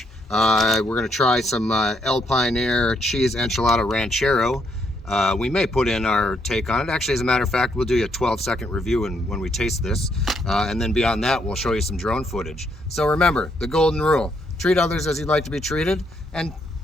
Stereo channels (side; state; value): both; normal; correlation 0.73